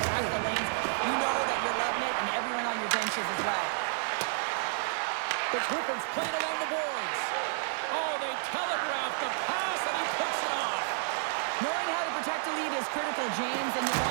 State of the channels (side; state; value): left; silent; digital silence